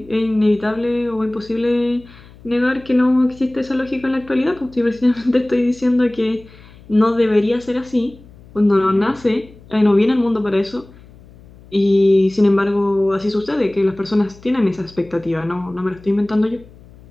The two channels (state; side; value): noise; left; hum, 23 dB below the sound